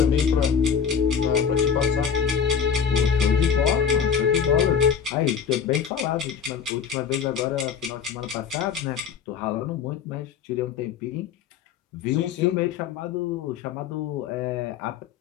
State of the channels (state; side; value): quieter; right; 7.1 dB